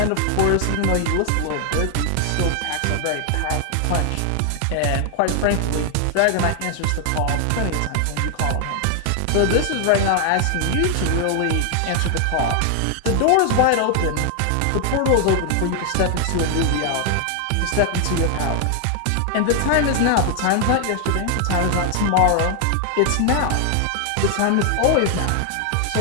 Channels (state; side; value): different; both; correlation 0.00